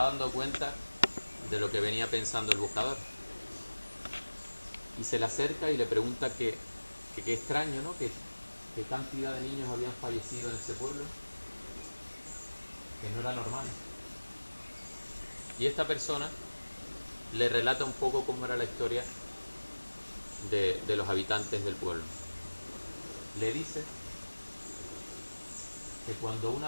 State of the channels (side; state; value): both; inverted; correlation -1.00